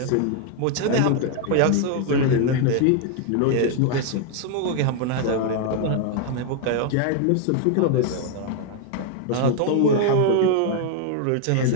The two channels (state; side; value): different; both; correlation 0.00